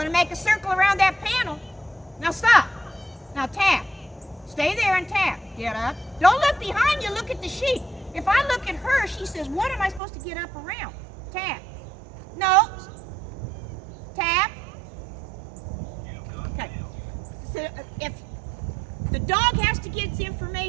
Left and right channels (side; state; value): left; drops out; at 10.0 s